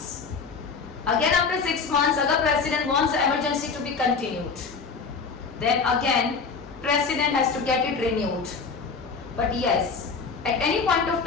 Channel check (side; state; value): right; quieter; 5.1 dB